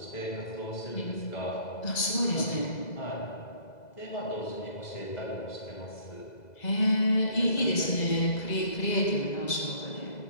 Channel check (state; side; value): late; right; 2.0 ms